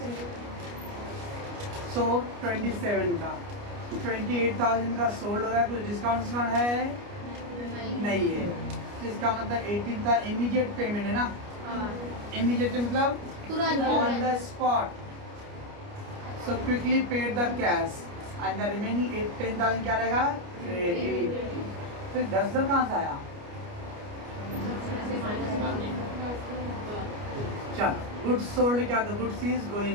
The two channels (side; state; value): left; late; 29 ms